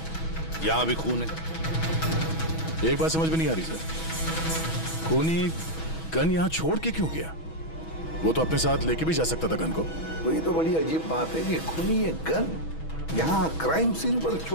यहां भी खून है। एक बात समझ में नहीं आ रही सर, खूनी गन यहां छोड़ के क्यों गया? वो तो अपने साथ लेके भी जा सकता था गन को। वही तो बड़ी अजीब बात है कि खूनी ये गन यहां क्राइम सीन पर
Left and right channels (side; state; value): right; late; 6.2 ms